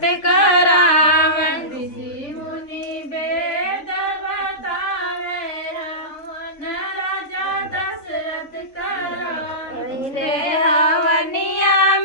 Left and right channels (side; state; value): right; late; 3.6 ms